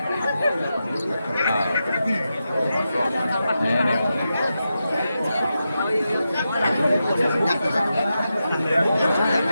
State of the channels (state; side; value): inverted; both; correlation -0.88